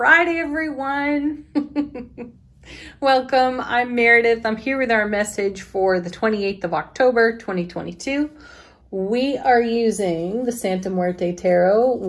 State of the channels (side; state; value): both; identical; correlation 1.00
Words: everyone. Welcome. I'm Meredith. I'm here with our message for the 28th of October, 2022. We are using the Santa Muerte Tarot